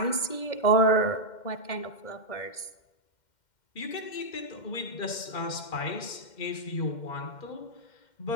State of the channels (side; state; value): right; late; 2.1 ms